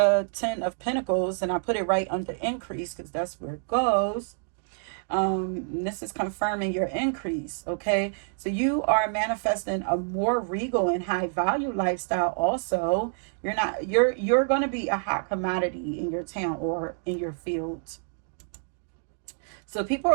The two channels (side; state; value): left; silent; digital silence